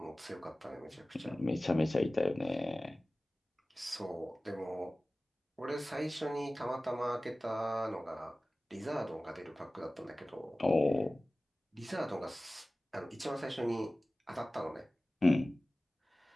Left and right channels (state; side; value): normal; both; correlation 0.97